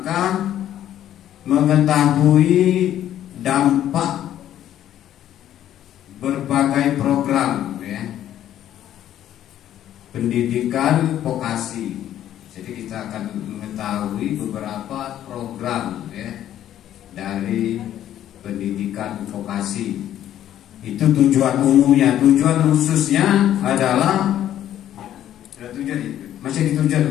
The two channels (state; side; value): quieter; right; 11.6 dB